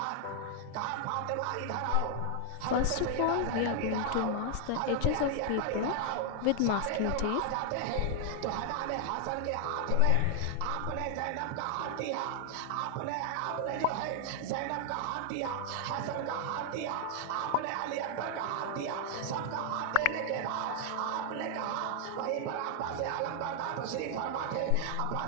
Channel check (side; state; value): both; different; correlation 0.00